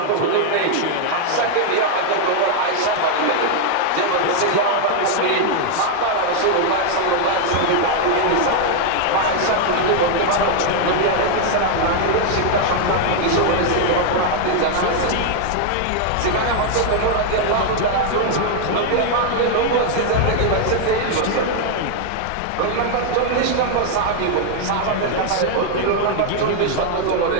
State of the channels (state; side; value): different; both; correlation 0.00